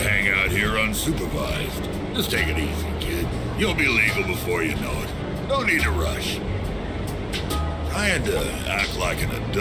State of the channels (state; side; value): identical; both; correlation 1.00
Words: out here unsupervised. Just take it easy, kid. You'll be legal before you know it. No need to rush. Trying to act like an